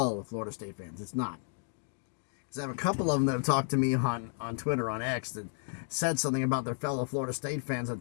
Florida State fans. It's not. Because I have a couple of them that have talked to me on Twitter, on X, that said something about their fellow Florida State fans.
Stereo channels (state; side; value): silent; right; digital silence